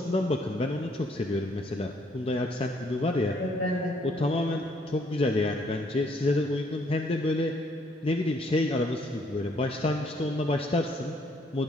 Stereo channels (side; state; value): both; normal; correlation 0.67